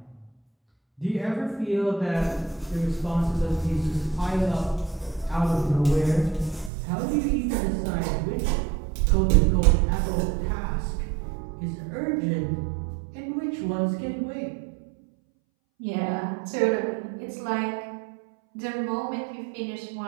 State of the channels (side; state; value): left; drops out; at 6.7 s